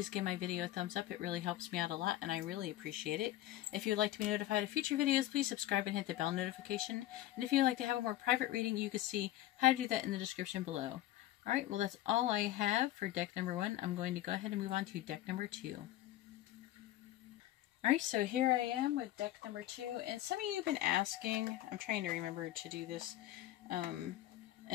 give my video a thumbs up. It really helps me out a lot, and I really appreciate it. If you would like to be notified of future videos, please subscribe and hit the bell notification. And if you would like to have a more private reading, you can see how to do that in the description below. Alright, well that's all I have for deck number 1. I'm going to go ahead and move on to deck number 2. Alright, so here I am with deck number 2. And some of you have been asking, I'm trying to remember to do this, and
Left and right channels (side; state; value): right; quieter; 14.5 dB